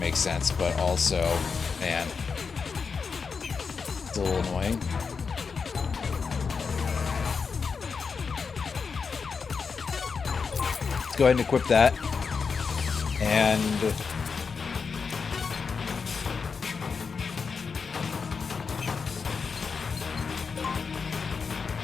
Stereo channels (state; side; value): quieter; right; 5.4 dB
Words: sense, but also, man, it's a little annoying. Let's go ahead and equip that. And...